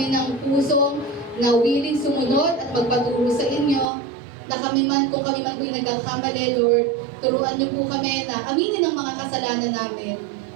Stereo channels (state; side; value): drops out; left; at 3.9 s